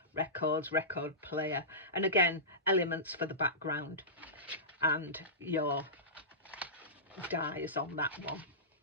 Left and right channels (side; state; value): both; normal; correlation -0.19